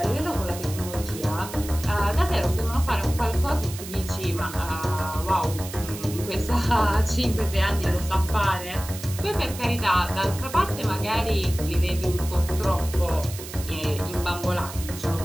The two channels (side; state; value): right; noise; hiss, 12 dB below the sound